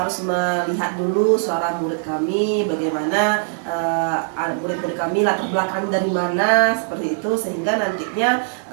melihat dulu suara murid kami, bagaimana murid-murid kami latar belakang dari mana seperti itu, sehingga nantinya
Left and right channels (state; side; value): silent; left; 65 dB below the other